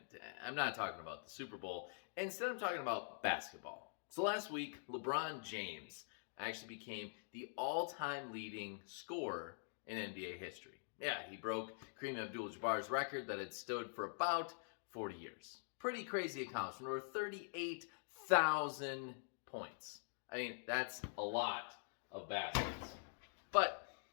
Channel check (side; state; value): right; silent; digital silence